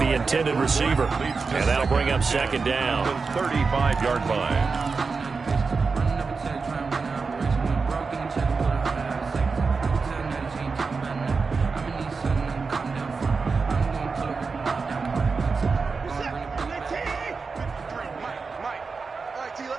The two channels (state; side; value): quieter; left; 4.7 dB